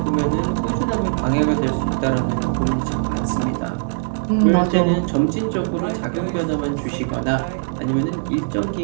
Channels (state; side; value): silent; left; digital silence